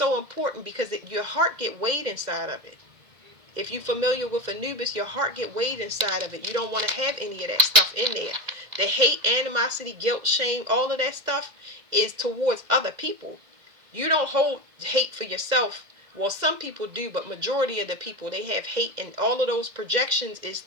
important because your heart get weighed inside of it. If you're familiar with Anubis, your heart get weighed inside of it. You don't want to have any of that stuff in there. The hate, animosity, guilt, shame, all of that stuff is towards other people. You don't hold hate for yourself. Well, some people do, but majority of the people, they have hate, and all of those projections is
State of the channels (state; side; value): late; left; 2.0 ms